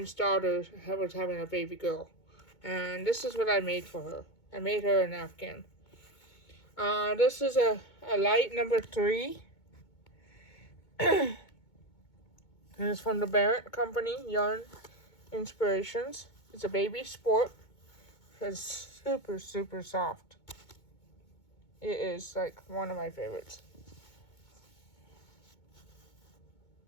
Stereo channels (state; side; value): late; right; 2.2 ms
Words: daughter was having a baby girl. And this is what I made for her. I made her an Afghan. This is a light number 3. And it's from the Barrett Company, Yarn Inspirations. It's a baby sport. It's super, super soft. It is like one of my favorites.